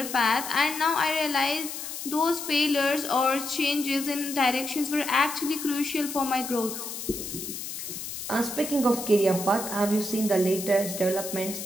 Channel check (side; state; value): left; noise; hiss, 7 dB below the sound